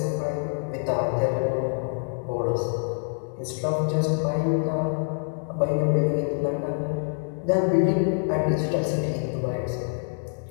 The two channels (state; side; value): silent; right; digital silence